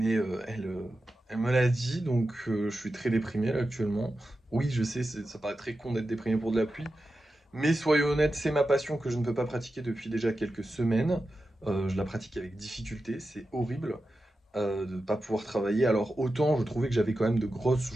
elle me l'a dit, donc je suis très déprimé là, actuellement. Oui, je sais, ça paraît très con d'être déprimé pour de la pluie, mais soyons honnêtes, c'est ma passion que je ne peux pas pratiquer depuis déjà quelques semaines. Je la pratique avec difficulté, c'est horrible de ne pas pouvoir travailler. Alors autant je trouvais que j'avais quand même de grosses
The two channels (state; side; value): normal; both; correlation 0.91